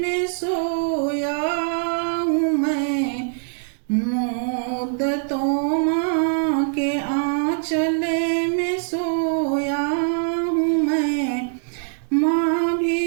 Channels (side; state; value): left; silent; 64 dB below the other